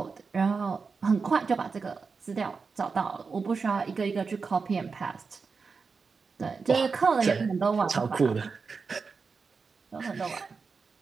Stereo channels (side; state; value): left; quieter; 4.9 dB